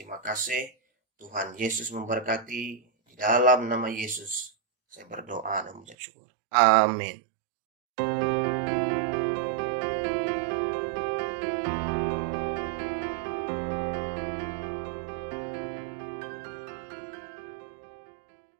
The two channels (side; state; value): left; drops out; at 6.0 s